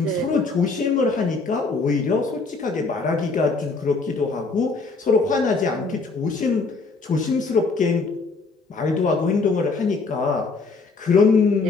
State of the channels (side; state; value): right; quieter; 4.0 dB